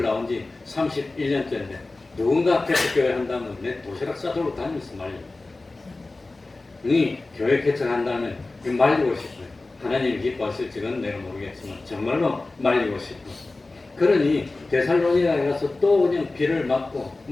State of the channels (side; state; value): right; quieter; 3.2 dB